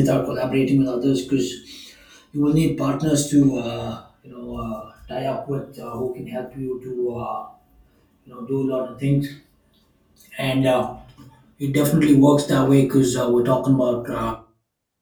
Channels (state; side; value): identical; both; correlation 1.00